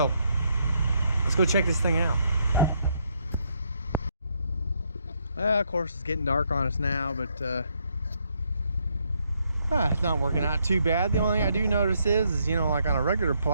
let's go check this thing out. Of course it's getting dark on us now, but it's not working out too bad. The only thing I do notice is, you know, like on a regular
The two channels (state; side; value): inverted; both; correlation -0.74